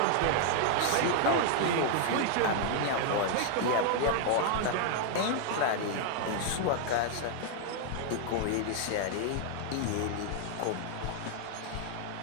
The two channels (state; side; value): different; both; correlation 0.00